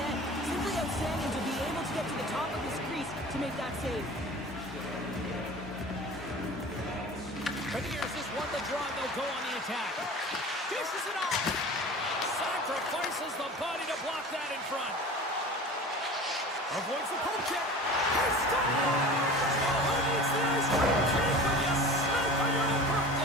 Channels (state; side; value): normal; both; correlation 0.38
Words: Simply outstanding to be able to get to the top of his crease to make that save. Beniers has won the draw, and they'll go on the attack. Dishes it off. Sacrifices the body to block that in front. Avoids the poke check. He scores! Oh, who needs the ice cream cake when you smoke on your own